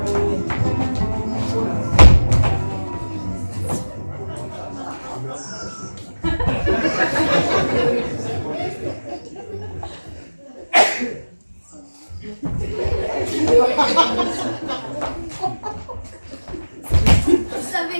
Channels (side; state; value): both; inverted; correlation -1.00